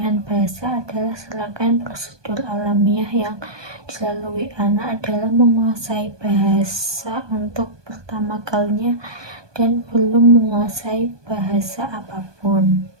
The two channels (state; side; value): late; left; 1.2 ms